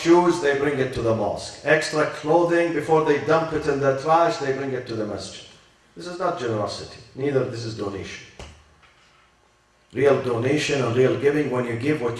they bring it to the mosque. Extra clothing, before they dump it in the trash, they bring it to the masjid. This is not generosity. Neither this is donation. Real donation and real giving when you give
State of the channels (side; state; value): both; identical; correlation 1.00